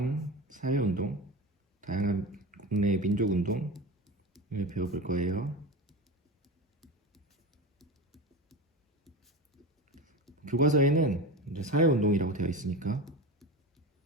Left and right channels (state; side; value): normal; both; correlation 0.26